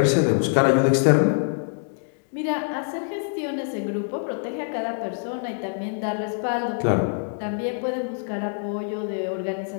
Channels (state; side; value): silent; right; digital silence